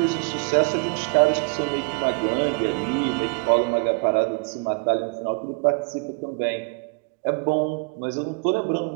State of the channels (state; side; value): quieter; left; 34.3 dB